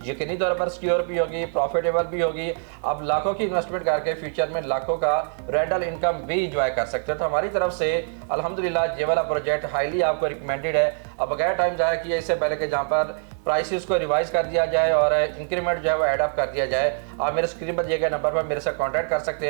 यकीनी तौर पर सिक्योर भी होगी, प्रॉफिटेबल भी होगी। आप लाखों की इन्वेस्टमेंट करके फ्यूचर में लाखों का रेंटल इनकम भी इंजॉय कर सकते हो। तो हमारी तरफ से अल्हम्दुलिल्लाह ये वाला प्रोजेक्ट हाईली आपको रिकमेंडेड है। अब बगैर टाइम ज़ाया किए, इससे पहले कि जहाँ पर प्राइसेस को रिवाइज कर दिया जाए और इंक्रीमेंट जो है वो एडअप कर दिया जाए, आप मेरे स्क्रीन पर दिए गए नंबर पर मेरे से कांटेक्ट कर सकते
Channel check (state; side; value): silent; left; 63 dB below the other